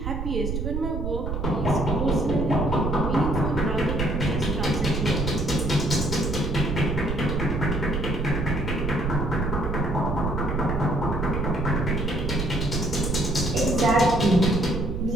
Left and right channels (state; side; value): noise; right; rumble, 3 dB below the sound